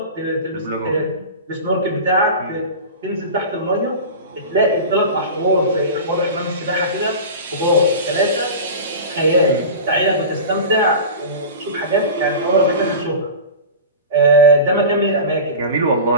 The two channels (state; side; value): inverted; both; correlation -0.31